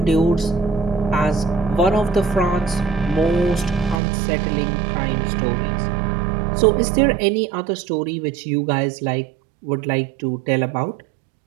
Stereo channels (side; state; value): left; drops out; at 4.0 s